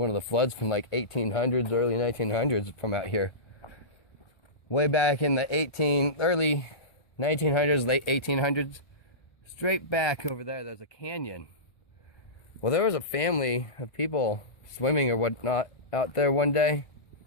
of the floods from like 1800s, early 1900s from out here. Way back in the early 1900s, late 1800s. Straight back over there, there's a canyon. Well, there was a family of people swimming or whatnot out there one day.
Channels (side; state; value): right; late; 1.4 ms